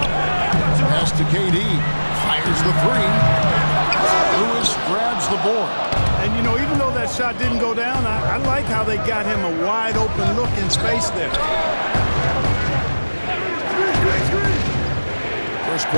Pass to KD. Fires the three. Lewis grabs the board. And, you know, even though that shot didn't go down, I like how they got him a wide-open look in space there. First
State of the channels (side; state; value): both; inverted; correlation -1.00